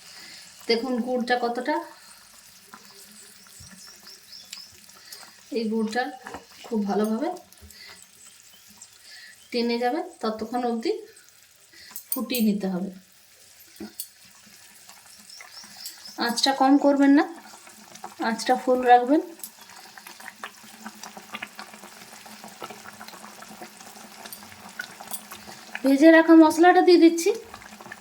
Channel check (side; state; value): both; identical; correlation 1.00